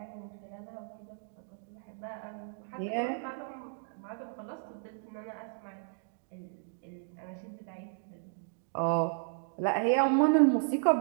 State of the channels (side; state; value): left; silent; digital silence